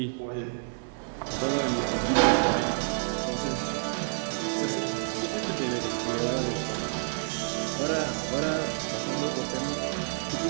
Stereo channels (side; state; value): left; silent; 59 dB below the other